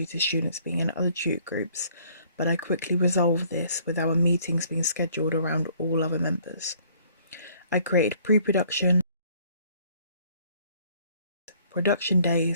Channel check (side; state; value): both; inverted; correlation -0.60